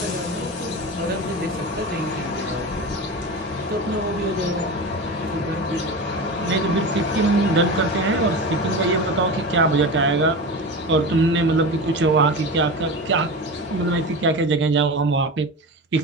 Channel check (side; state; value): both; normal; correlation 0.27